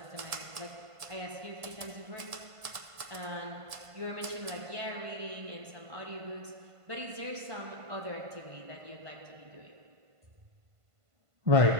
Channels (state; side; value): late; left; 1.5 ms